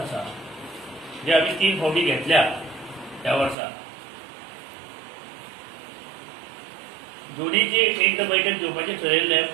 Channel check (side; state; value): left; drops out; at 3.6 s